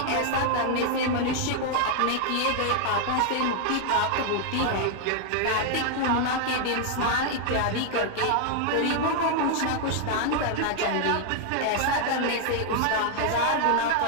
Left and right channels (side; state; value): both; different; correlation 0.00